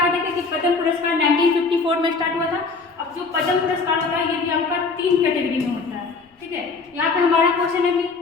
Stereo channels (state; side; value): quieter; right; 4.3 dB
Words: देखें कि पद्म पुरस्कार 1954 में स्टार्ट हुआ था। अब जो पद्म पुरस्कार होता है ये भी आपका 3 कैटेगरी में होता है। ठीक है, यहाँ पे हमारा क्वेश्चन है कि